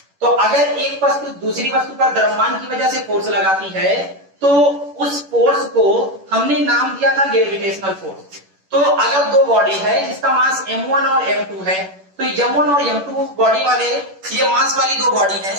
तो अगर एक वस्तु दूसरी वस्तु पर द्रव्यमान की वजह से फोर्स लगाती है तो उस फोर्स को हमने नाम दिया था ग्रेविटेशनल फोर्स। तो अगर दो बॉडी है जिसका मास m1 और m2 है तो m1 और m2 बॉडी वाले ये मास वाली दो बॉडी है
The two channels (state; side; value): late; left; 11 ms